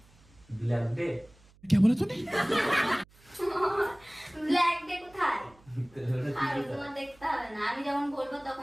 Black day? क्या बोला तूने? ব্ল্যাক ডে কোথায়? আর তোমার দেখতে হবে না, আমি যখন বলবো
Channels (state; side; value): noise; right; hum, 28 dB below the sound